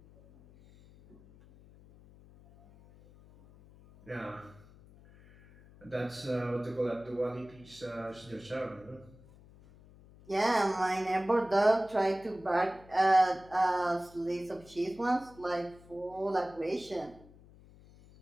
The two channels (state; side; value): noise; left; hum, 23 dB below the sound